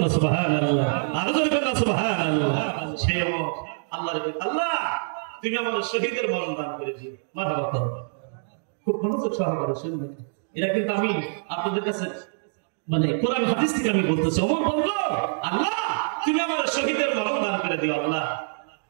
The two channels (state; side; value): silent; left; digital silence